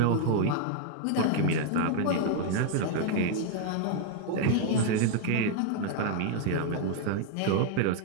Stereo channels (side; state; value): both; different; correlation 0.00